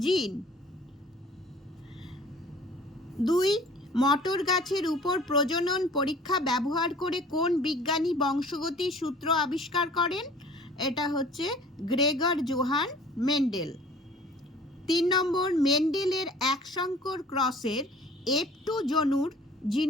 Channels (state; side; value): normal; both; correlation 0.49